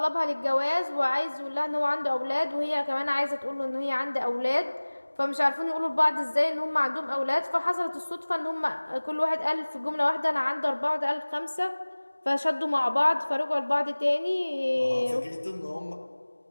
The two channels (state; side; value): inverted; both; correlation -1.00